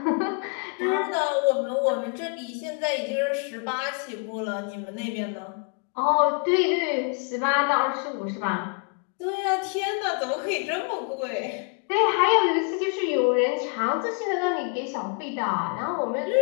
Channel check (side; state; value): right; quieter; 37.9 dB